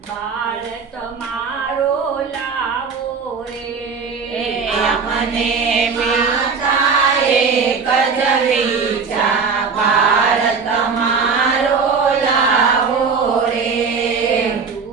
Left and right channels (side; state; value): left; quieter; 5.3 dB